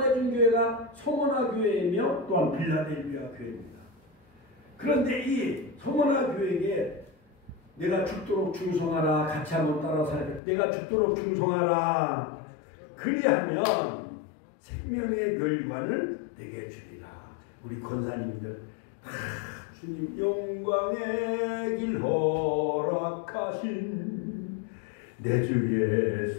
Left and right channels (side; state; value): right; drops out; at 10.4 s